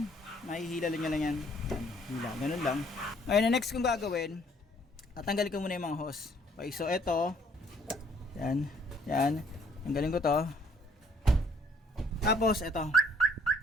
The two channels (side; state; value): both; normal; correlation 0.62